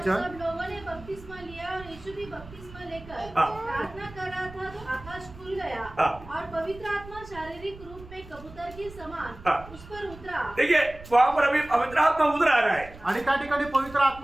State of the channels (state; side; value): noise; right; rumble, 18 dB below the sound